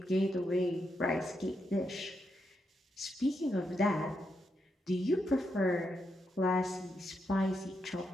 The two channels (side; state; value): both; normal; correlation 0.82